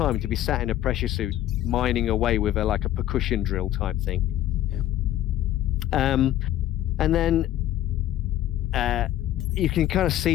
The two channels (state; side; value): quieter; right; 13.1 dB